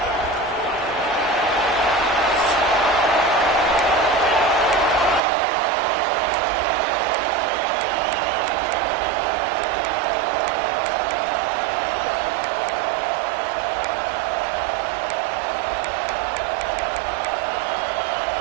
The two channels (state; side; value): drops out; left; at 5.2 s